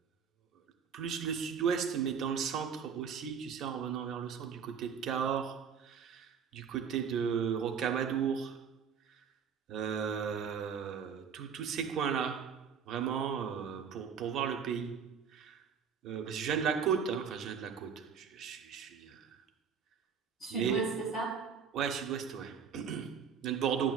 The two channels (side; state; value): left; quieter; 6.9 dB